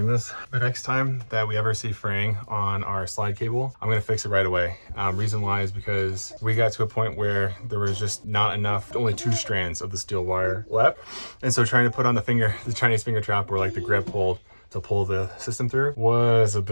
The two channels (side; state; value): both; inverted; correlation -1.00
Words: this. The next time that we ever see fraying on our slide cable, I'm gonna fix it right away. Reason why is because we got to a point where there was just not enough, only 2 strands of the steel wire left. And so trying to put on the Chinese finger trap where like the grip hold to pull the system through was a